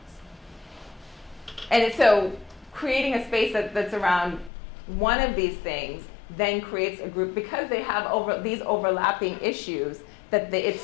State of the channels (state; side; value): drops out; right; at 4.5 s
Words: And so creating a space that's around one of these things then creates a group, because they have these overlapping issues, that it